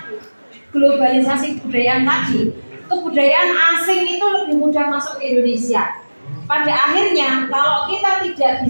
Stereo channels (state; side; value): inverted; both; correlation -1.00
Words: globalisasi kebudayaan tadi, kebudayaan asing itu lebih mudah masuk ke Indonesia. Pada akhirnya kalau kita tidak